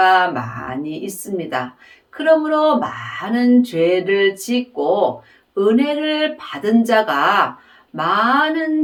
많이 있습니다. 그러므로 많은 죄를 짓고 은혜를 받은 자가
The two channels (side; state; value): both; identical; correlation 1.00